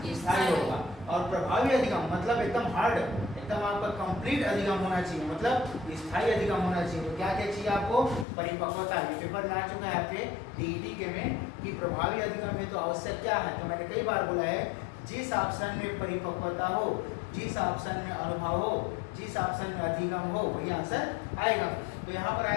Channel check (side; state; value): right; drops out; at 8.2 s